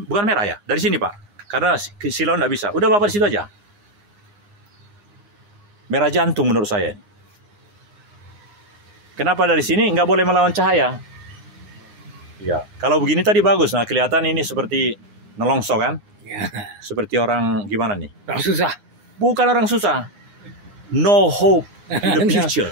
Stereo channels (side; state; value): left; late; 9.8 ms